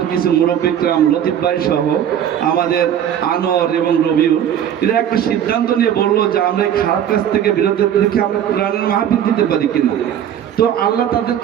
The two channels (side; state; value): left; quieter; 9.8 dB